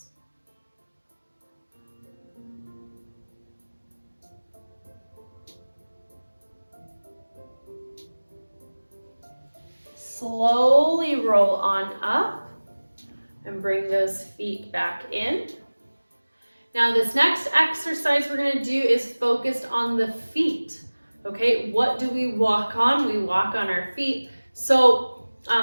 Slowly roll on up and bring those feet back in. Now this next exercise we're gonna do is focused on the feet. Okay, what do we walk on? We walk on our feet. So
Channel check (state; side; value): inverted; both; correlation -1.00